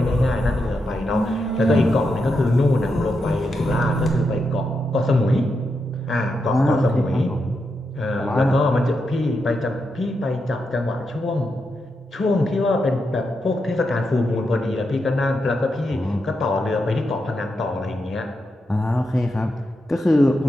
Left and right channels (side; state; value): both; normal; correlation 0.85